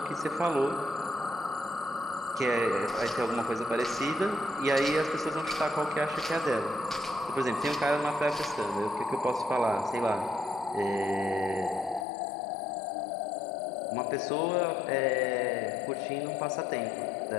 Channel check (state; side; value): drops out; right; at 12.1 s